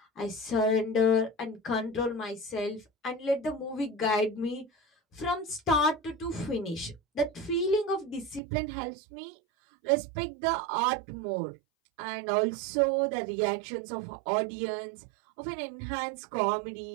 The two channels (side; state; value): left; drops out; at 8.4 s